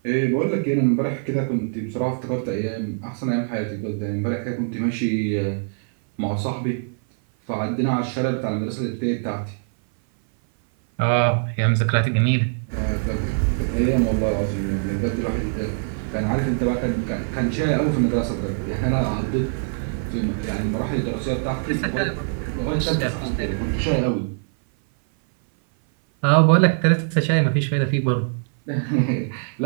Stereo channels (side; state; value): left; silent; 57 dB below the other